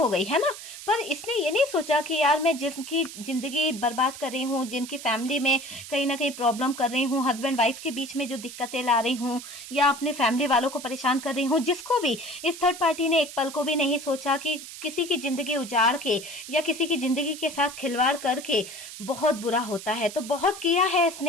गई, है ना। पर इसने ये नहीं सोचा कि यार मैं जिनकी जिंदगी बर्बाद कर रही हूँ, जिनकी फैमिली में कहीं ना कहीं प्रॉब्लम कर रही हूँ, हस्बैंड वाइफ के बीच में जो दिक्कतें ला रही हूँ, या अपने फैमिली वालों को परेशान कर रही हूँ, जिसको भी इस थर्ड पार्टी ने एक पल को भी नहीं सोचा कि किसी की जिंदगी उजाड़ के या किसी की जिंदगी के साथ खिलवाड़ करके बहुत बुरा होता है। तो बहुत किया है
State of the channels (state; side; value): noise; right; hiss, 12 dB below the sound